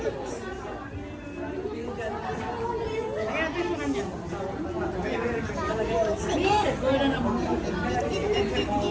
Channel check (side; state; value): both; identical; correlation 1.00